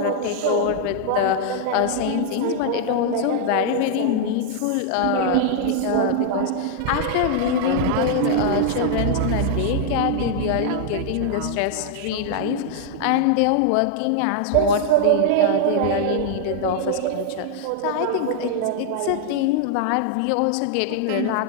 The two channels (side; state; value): both; different; correlation 0.00